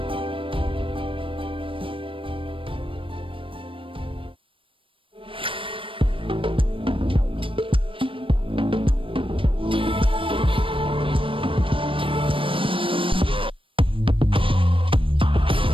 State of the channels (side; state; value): left; late; 0.25 ms